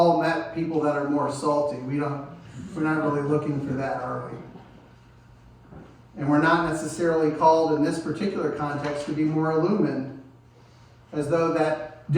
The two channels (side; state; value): both; identical; correlation 1.00